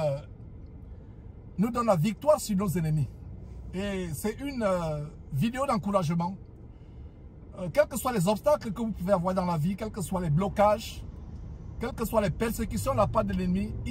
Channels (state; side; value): identical; both; correlation 1.00